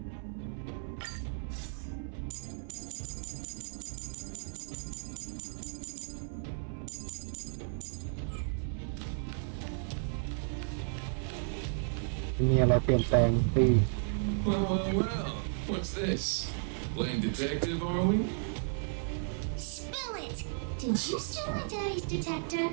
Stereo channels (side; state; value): left; silent; 55 dB below the other